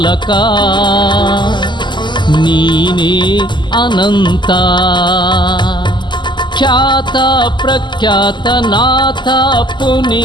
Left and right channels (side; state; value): right; late; 0.22 ms